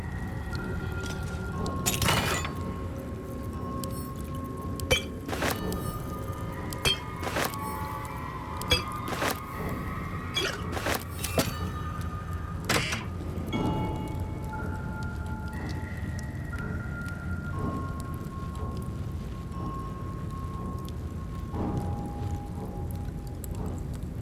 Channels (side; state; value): both; identical; correlation 1.00